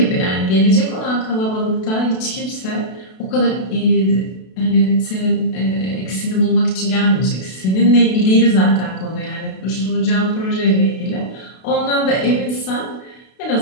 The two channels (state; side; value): late; right; 32 ms